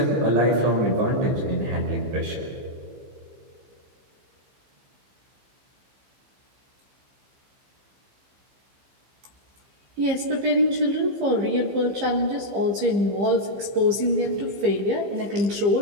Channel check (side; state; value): left; late; 15 ms